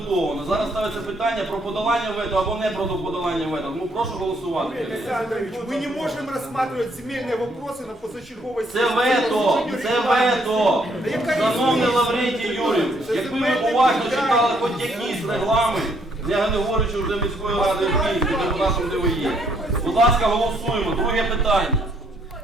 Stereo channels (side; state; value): both; normal; correlation 0.69